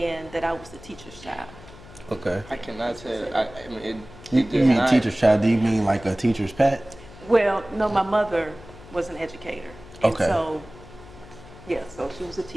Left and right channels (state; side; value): noise; left; hum, 19 dB below the sound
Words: that I was the teacher's child. Okay. I cannot say. I mean, You it does mean not. teacher's child? Do you mean like a teacher's pet? Well, no, my mother was an educator. And Okay. so, yeah, so she was a